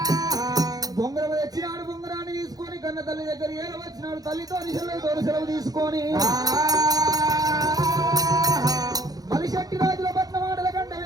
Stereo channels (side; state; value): left; late; 0.18 ms